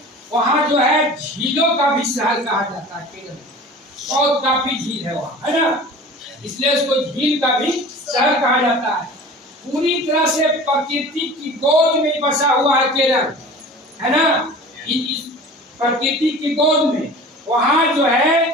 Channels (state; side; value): normal; both; correlation 0.40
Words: वहाँ जो है झीलों का भी शहर कहा जाता है केरल में। बहुत काफी झील है वहाँ, है ना, इसलिए उसको झील का भी शहर कहा जाता है। पूरी तरह से प्रकृति की गोद में बसा हुआ है केरल, है ना, इस प्रकृति की गोद में। वहाँ जो है